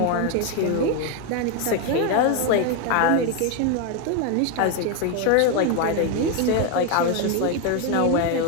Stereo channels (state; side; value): different; both; correlation 0.01